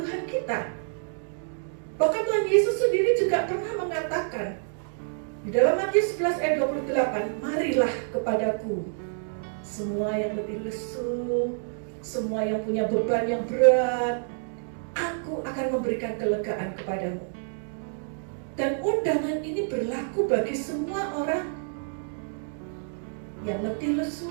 kita. Bahkan Tuhan Yesus sendiri juga pernah mengatakan di dalam Matius 11 ayat 28, marilah kepadaku semua yang letih lesu, semua yang punya beban yang berat, aku akan memberikan kelegaan kepadamu. Dan undangan ini berlaku bagi semua orang yang letih lesu,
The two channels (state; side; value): silent; left; digital silence